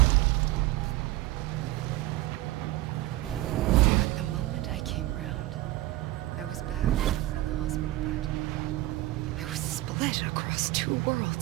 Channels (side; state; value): left; quieter; 17.5 dB